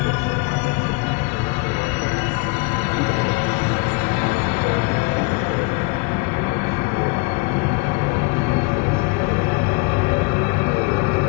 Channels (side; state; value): right; quieter; 28.8 dB